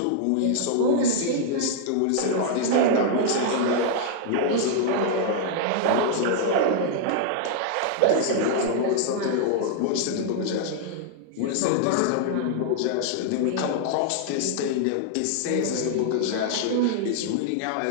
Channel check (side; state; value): both; different; correlation -0.01